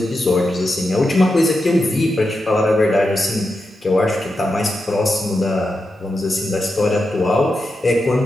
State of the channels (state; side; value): normal; both; correlation 0.88